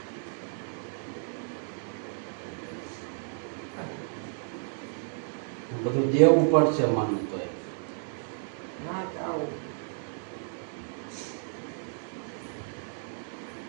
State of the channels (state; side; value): silent; left; 57 dB below the other